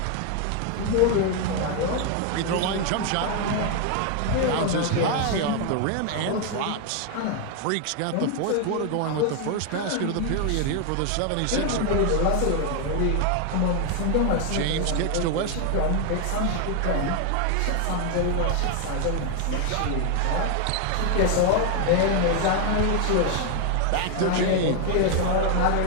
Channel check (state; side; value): different; both; correlation 0.01